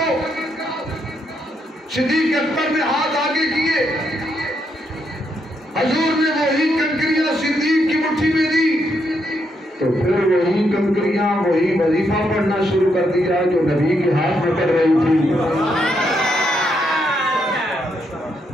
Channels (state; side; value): normal; both; correlation 0.78